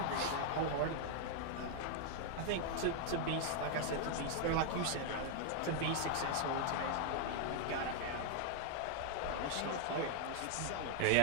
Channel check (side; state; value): both; different; correlation 0.00